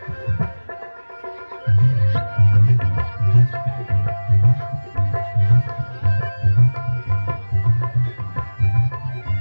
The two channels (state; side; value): inverted; both; correlation -1.00